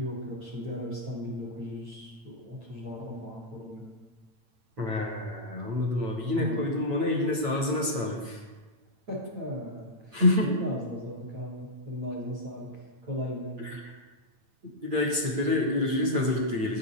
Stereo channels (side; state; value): left; late; 8.9 ms